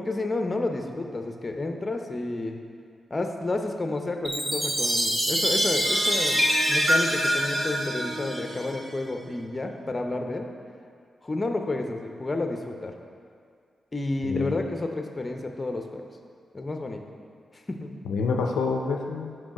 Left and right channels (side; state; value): both; normal; correlation 0.89